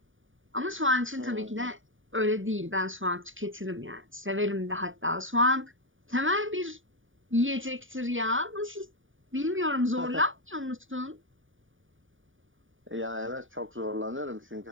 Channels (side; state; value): left; late; 0.57 ms